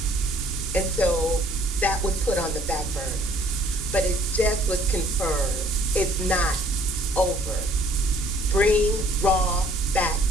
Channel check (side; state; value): both; normal; correlation 0.59